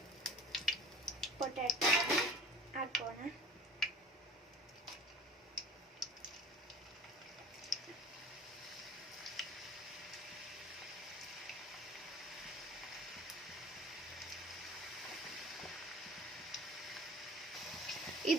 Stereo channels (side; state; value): both; normal; correlation 0.45